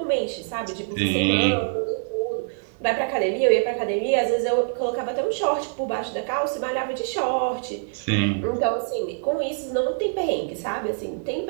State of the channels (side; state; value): left; silent; 62 dB below the other